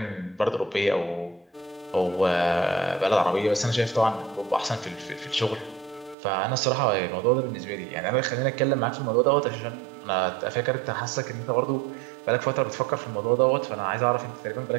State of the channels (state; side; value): drops out; left; at 6.2 s